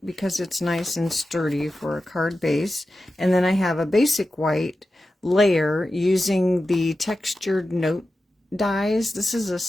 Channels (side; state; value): both; normal; correlation 0.93